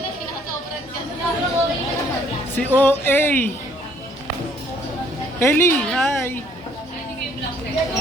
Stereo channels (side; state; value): both; normal; correlation 0.62